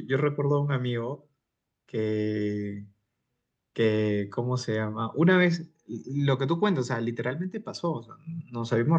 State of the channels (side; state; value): both; identical; correlation 1.00